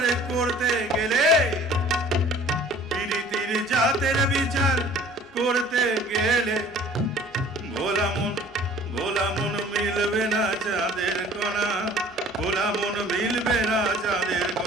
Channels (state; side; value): normal; both; correlation 0.50